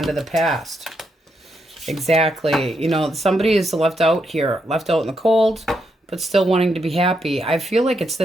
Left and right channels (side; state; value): both; normal; correlation 0.80